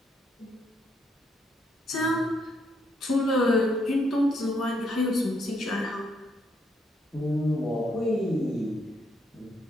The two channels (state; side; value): normal; both; correlation 0.74